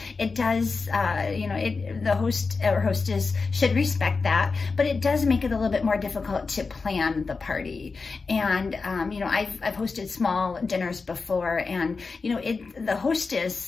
it does, the host or hostess should respect that, but it does make it a little bit more difficult to plan the party. And, I've hosted small dinners before, and, the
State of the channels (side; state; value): right; quieter; 4.4 dB